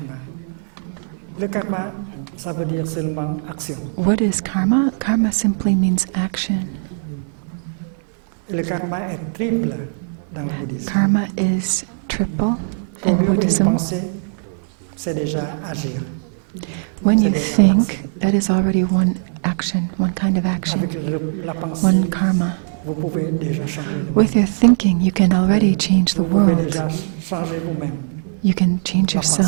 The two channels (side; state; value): left; silent; digital silence